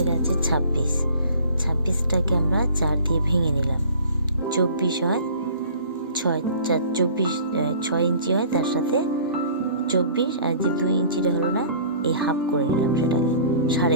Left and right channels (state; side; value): inverted; both; correlation -0.48